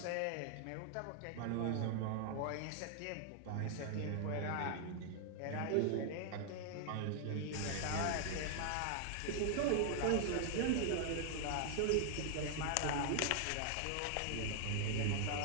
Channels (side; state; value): both; different; correlation 0.00